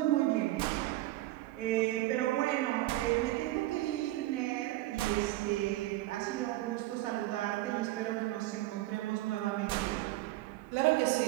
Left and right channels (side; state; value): left; quieter; 17.1 dB